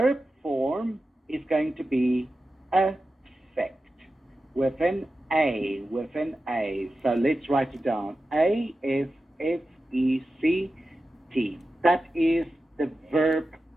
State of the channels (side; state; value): both; normal; correlation 0.93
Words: form is going to be affect with an A. So let's write it down. A-F-F-E-C-T. That is the verb